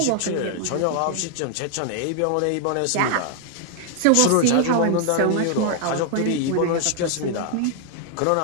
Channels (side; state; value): both; different; correlation 0.00